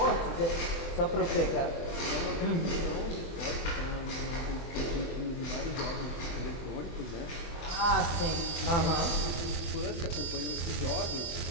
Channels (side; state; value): right; late; 24 ms